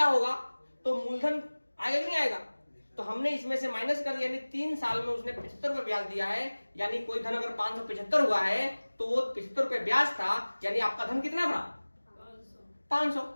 होगा, तो मूलधन आएगा कि नहीं आएगा। तो हमने इसमें से माइनस कर दिया, यानी 3 साल में उसने 75 रुपए ब्याज दिया है। यानी कोई धन अगर 575 हुआ है तो वो 75 रुपए ब्याज था, यानी आपका धन कितना था, 500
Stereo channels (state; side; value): inverted; both; correlation -1.00